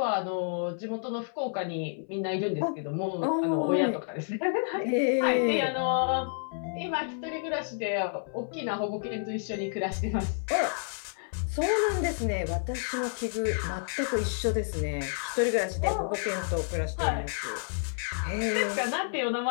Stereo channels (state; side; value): silent; right; 58 dB below the other